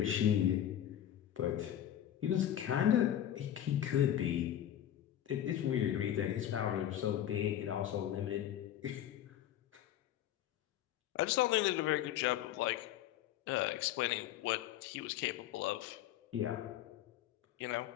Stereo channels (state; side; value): quieter; right; 11.4 dB